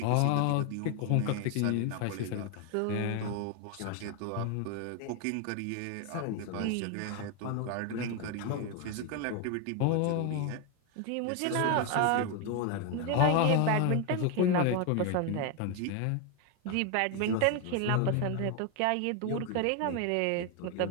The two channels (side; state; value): both; different; correlation 0.01